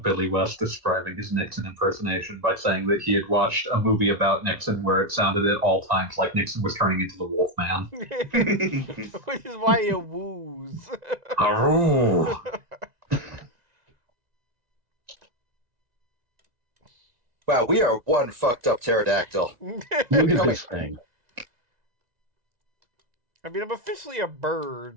Billy West describing his Nixon impersonation by saying that he had watched a movie about Nixon where it sounded at all times like Nixon was turning into the Wolfman. Which is why you woos. Aroo! Wow, we are one fucked up pterodactyl. Look at this thing. I mean, I'm officially a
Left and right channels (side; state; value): left; late; 1.9 ms